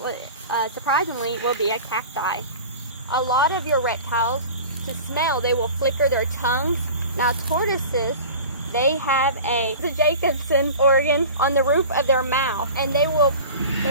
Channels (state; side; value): inverted; both; correlation -0.38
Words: surprisingly, will be a cacti. A lot of your reptiles, to smell, they will flicker their tongues. Now tortoises, they have the Jacobson organ on the roof of their mouth, and they will